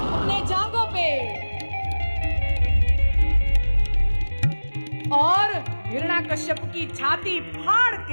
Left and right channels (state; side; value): inverted; both; correlation -1.00